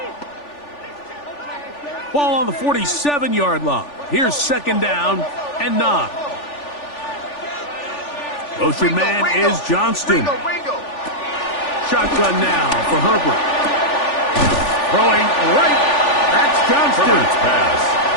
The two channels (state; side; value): late; right; 3.4 ms